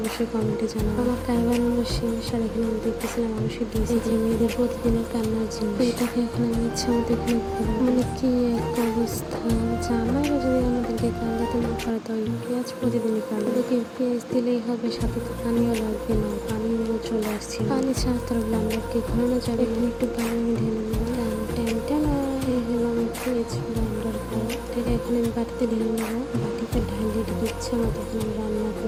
কমেন্টে জানাবো। আমার কাই বানানো শেষ। আর এখানে আমি দেখতেছিলাম আলু সিদ্ধ এই যে মেয়েদের প্রতিদিনের কান্নার জিনিস। তো এটাকে এখন আমি ইচ্ছা মতো এখানে মানে কি এক অবস্থা। জামাইরা যদি আমাদেরকে কান্দাতে না পারে তো পেঁয়াজ প্রতিদিনই কান্দে। ওদেরকে পেঁয়াজ দিলেই হবে, সাথে তো পানিও লাগবে না। পানিও চলে আসছে। পানি ছাড়া তো ব্লান্ডারকে ঘোরানো যাবে। এখানে একটু পানি আমি ঢেলে দিলাম। টানা এই হলো আমার পেঁয়াজ ব্লান্ডার করা। এটাকে এখন আমি বাটিতে ঢেলে নেবো। বাটিতে ঢালিয়ে ইচ্ছা মতো এখন আমি রান্না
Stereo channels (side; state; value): both; identical; correlation 1.00